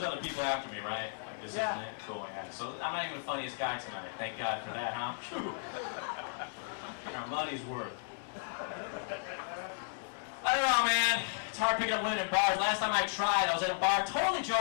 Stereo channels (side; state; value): right; silent; 55 dB below the other